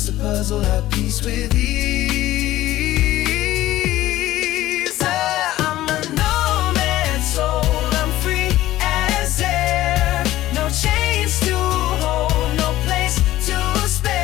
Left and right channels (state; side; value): quieter; right; 15.3 dB